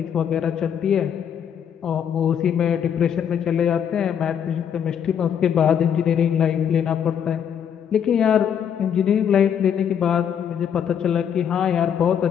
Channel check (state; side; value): quieter; right; 8.4 dB